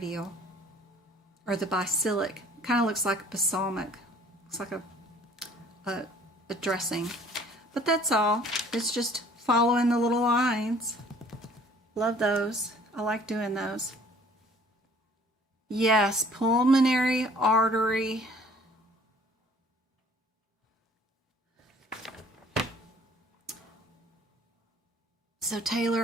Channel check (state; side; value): normal; both; correlation 0.54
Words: Or the basilic. Kind of looks like a balsamic. Looks like a dressing. But that's all. It's just following the little lines. Love those. I like doing those. Yes, pulmonary artery. So Taylor,